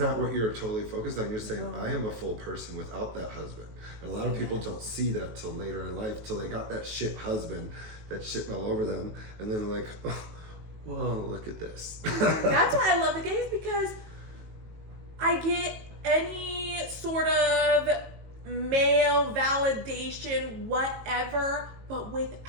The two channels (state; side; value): late; left; 19 ms